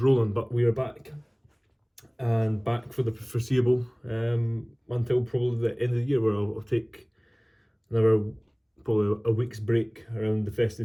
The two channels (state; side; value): identical; both; correlation 1.00